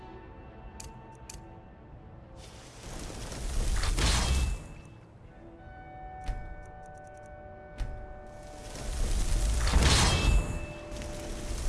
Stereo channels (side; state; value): both; identical; correlation 1.00